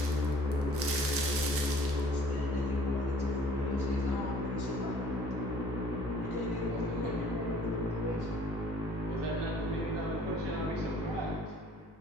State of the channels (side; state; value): both; normal; correlation 0.54